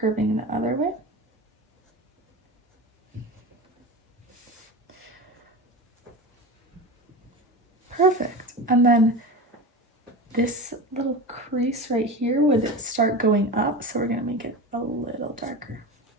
the other way. Perfect. And then this little crease right here would start going up, so we're gonna make it a little darker.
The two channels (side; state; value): both; normal; correlation 0.27